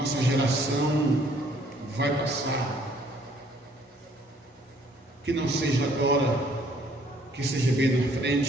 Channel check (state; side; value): normal; both; correlation 0.62